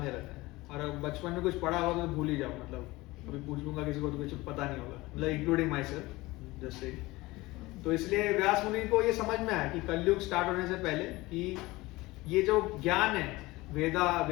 रहता है, और बचपन में कुछ पढ़ा होगा तो भूल ही जाओ, मतलब अभी पूछ लूंगा किसी को तो कुछ पता नहीं होगा, मतलब इंक्लूडिंग माई सेल्फ जैसे। तो इसलिए व्यास मुनि को ये समझ में आया कि कलयुग स्टार्ट होने से पहले कि ये जो ज्ञान है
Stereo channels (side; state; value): right; quieter; 20.5 dB